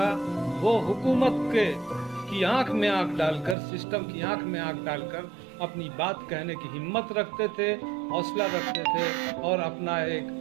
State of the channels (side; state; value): left; drops out; at 3.6 s